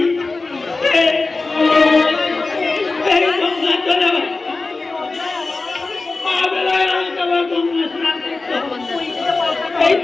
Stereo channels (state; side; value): quieter; right; 3.6 dB